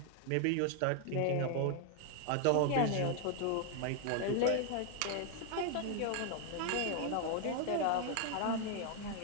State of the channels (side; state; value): both; different; correlation 0.00